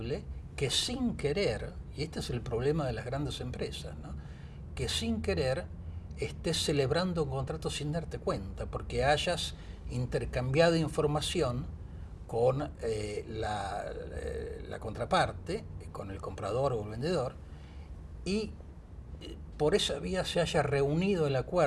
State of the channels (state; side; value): identical; both; correlation 1.00